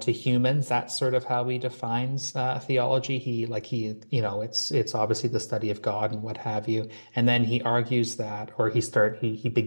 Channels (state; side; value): inverted; both; correlation -1.00